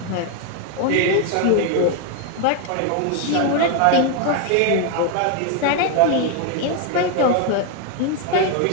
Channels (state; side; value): different; both; correlation 0.01